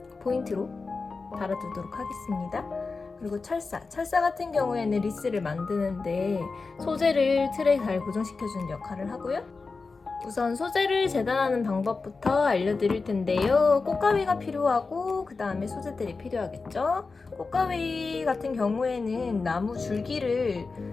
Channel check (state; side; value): quieter; right; 4.2 dB